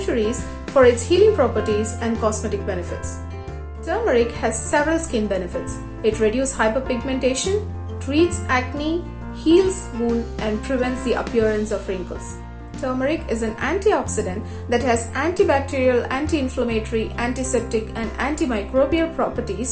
for its healing properties and cosmetic benefits. Turmeric has several skin benefits. It reduces hyperpigmentation, treats acne, heals wounds, and prevents the appearance of wrinkles. Turmeric is an antioxidant that has antibacterial, anti-inflammatory, antiseptic, and antimicrobial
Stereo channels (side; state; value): both; identical; correlation 1.00